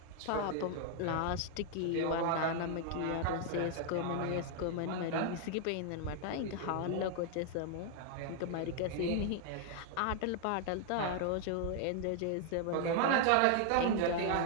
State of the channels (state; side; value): different; both; correlation 0.00